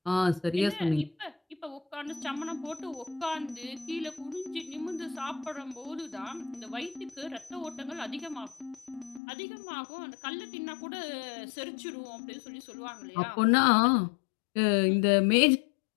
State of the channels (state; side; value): drops out; right; at 9.2 s